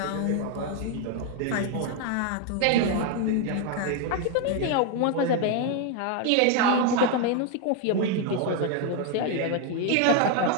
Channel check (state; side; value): different; both; correlation 0.01